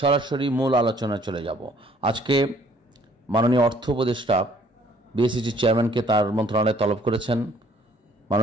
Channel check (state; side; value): normal; both; correlation 0.60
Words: মূল আলোচনায় চলে যাব। আজকে মাননীয় অর্থ উপদেষ্টা বিএসইসির চেয়ারম্যানকে তার মন্ত্রণালয়ে তলব করেছেন।